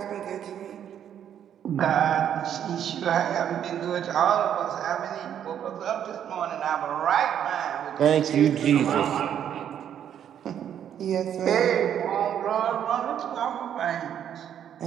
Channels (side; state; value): left; quieter; 9.5 dB